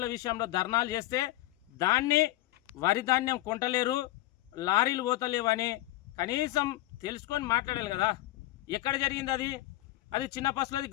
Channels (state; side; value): quieter; right; 16.4 dB